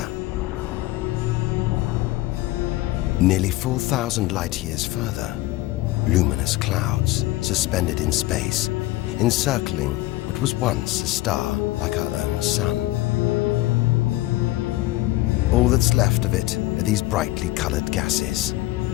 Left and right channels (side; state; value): right; quieter; 17.8 dB